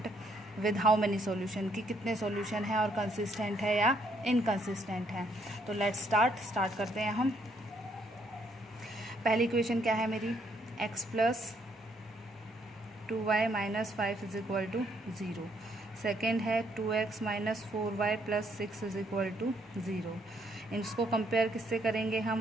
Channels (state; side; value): normal; both; correlation 0.70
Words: with how many solution, कि कितने सॉल्यूशन है और कंसिस्टेंट है या इनकंसिस्टेंट है। तो लेट्स स्टार्ट करते हैं हम। पहली इक्वेशन क्या है मेरी, x plus 2y minus 5 is equal to 0। Second है 2x minus 4y plus 6 is equal to 0। इसको कंपेयर किससे करेंगे हम,